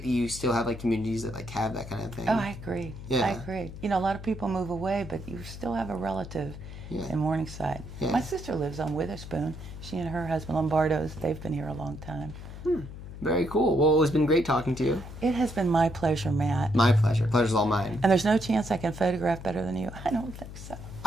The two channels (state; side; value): noise; left; hum, 12 dB below the sound